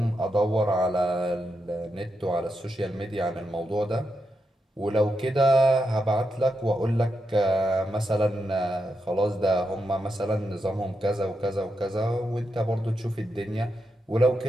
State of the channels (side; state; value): both; normal; correlation 0.85